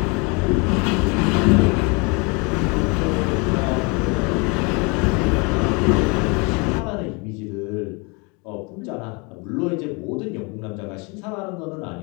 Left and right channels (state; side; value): quieter; right; 30.6 dB